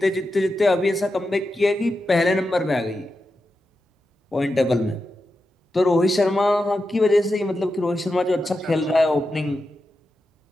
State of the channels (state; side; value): normal; both; correlation 0.89